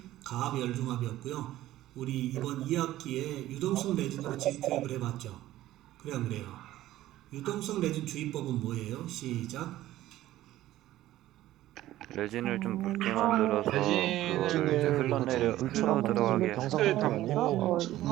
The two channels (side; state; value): left; quieter; 14.7 dB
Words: 가압 열중압이었고요. 우리 이번 2학기에 유동성 레진으로 지교육을 해봤죠. 그래 안 그래요? 유동성 레진 주의법은 뭐예요? 시작. 레진을 좀 묽게 만들어서 레진을 그거를 이제 흘러 물처럼 들어가게 병상에 담고